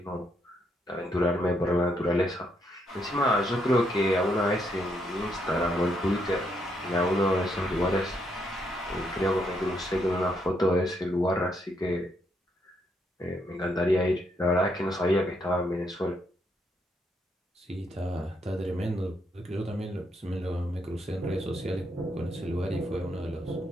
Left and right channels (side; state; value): both; normal; correlation 0.76